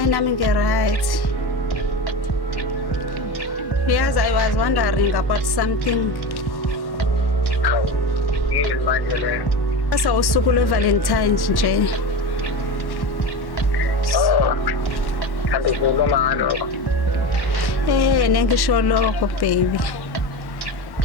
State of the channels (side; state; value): right; late; 1.1 ms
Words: nami nge-right. Yes, I was wondering about something. Yini manje le? Asa usuku lwe-Valentine's nje. Oh. Kanti kukhuluma ngalo. Nengisho lokho baby.